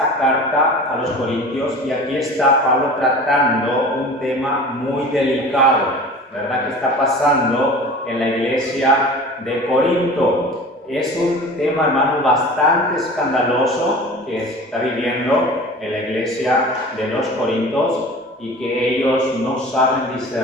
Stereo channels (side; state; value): both; normal; correlation 0.39